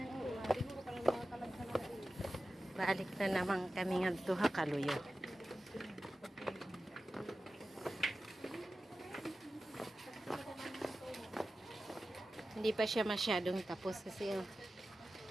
uwa. Siguro ka lang mga kalagsan na uwa. Balik na naman kami nga duha kaluyo. Hindi pa siya masyadong tapos kasi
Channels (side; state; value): both; normal; correlation 0.94